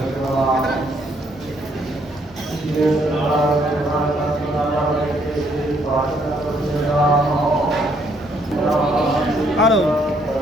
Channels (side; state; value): left; noise; rumble, 28 dB below the sound